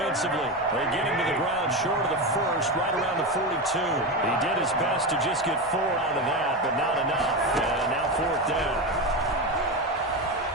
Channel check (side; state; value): both; normal; correlation 0.17